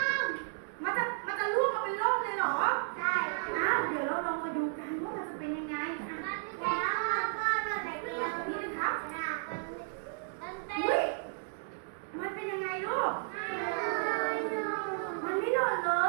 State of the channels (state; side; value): silent; left; digital silence